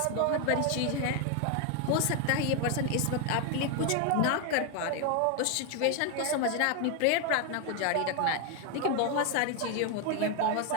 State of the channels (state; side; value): different; both; correlation 0.01